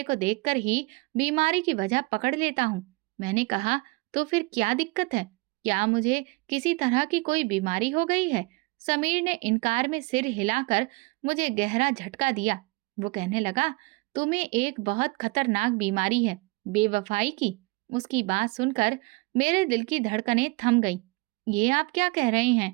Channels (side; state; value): left; quieter; 25.7 dB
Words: को देखकर ही बीमारी की वजह पकड़ लेता हूँ। मैंने कहा, तो फिर क्या दिक्कत है? क्या मुझे किसी तरह की कोई बीमारी हो गई है? समीर ने इनकार में सिर हिलाकर मुझे गहरा झटका दिया। वो कहने लगा, तुम्हें एक बहुत खतरनाक बीमारी है, बेवफाई की। उसकी बात सुनकर मेरे दिल की धड़कनें थम गई। ये आप क्या कह रहे